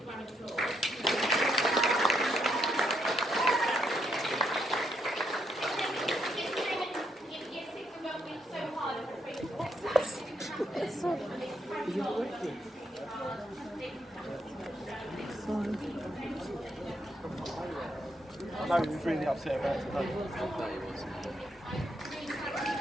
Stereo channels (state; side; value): normal; both; correlation 0.77